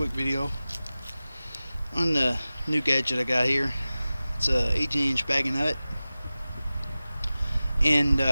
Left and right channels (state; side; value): inverted; both; correlation -0.96